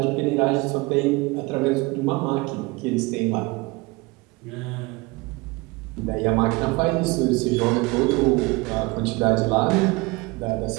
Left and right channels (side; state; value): left; quieter; 24.2 dB